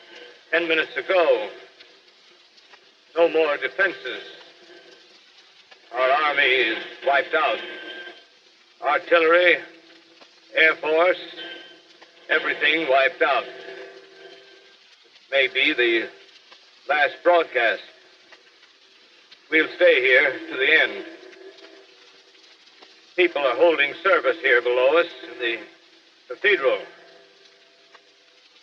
10 minutes ago. No more defenses. Our army is wiped out. Artillery, Air Force, everything wiped out. This may be the last broadcast. We'll stay here to the end. People are holding service here below us in the cathedral.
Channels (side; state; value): both; identical; correlation 1.00